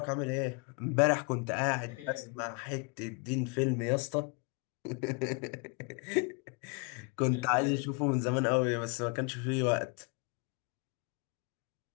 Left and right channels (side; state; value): right; quieter; 32.9 dB